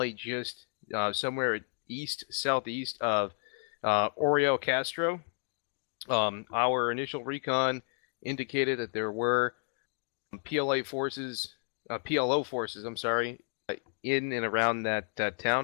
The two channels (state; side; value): silent; right; 57 dB below the other